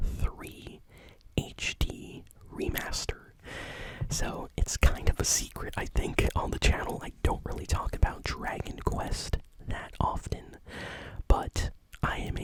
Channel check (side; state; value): both; identical; correlation 1.00